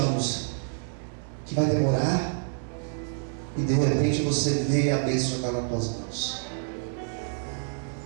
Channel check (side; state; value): left; silent; 60 dB below the other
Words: que vai demorar e de repente você vê a bênção estar nas tuas mãos.